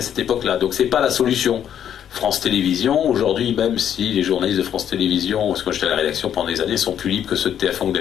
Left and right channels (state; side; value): quieter; right; 9.6 dB